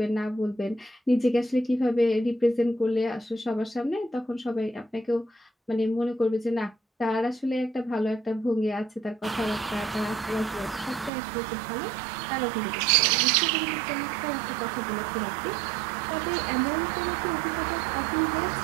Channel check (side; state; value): left; drops out; at 11.1 s